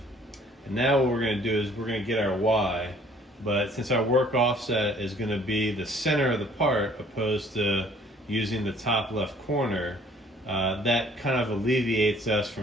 And now what we're going to do is we're going to get our Y, but since our work offset is going to be the center of the part opposed to using the top left corner, that kind of alleviates us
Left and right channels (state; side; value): normal; both; correlation 0.57